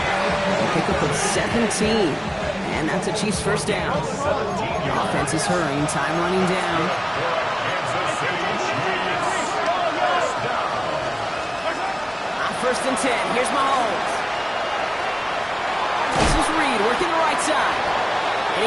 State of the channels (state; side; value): identical; both; correlation 1.00